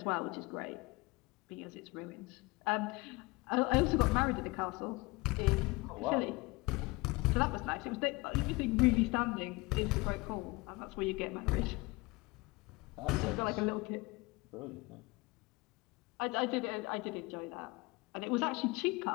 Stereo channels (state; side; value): quieter; right; 24.1 dB